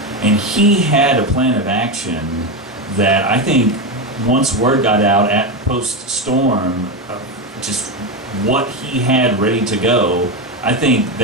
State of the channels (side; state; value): both; normal; correlation 0.13